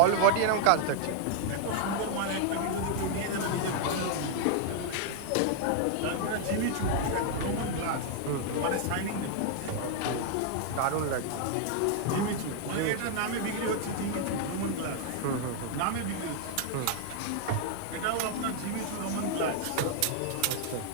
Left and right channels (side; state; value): both; different; correlation 0.00